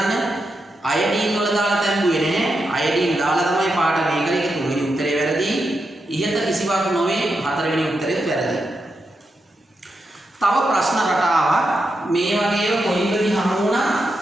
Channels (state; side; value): normal; both; correlation 0.86